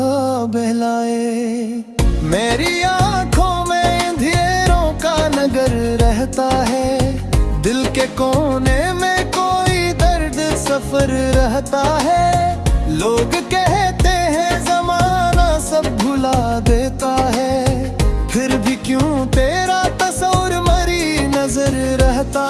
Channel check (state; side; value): identical; both; correlation 1.00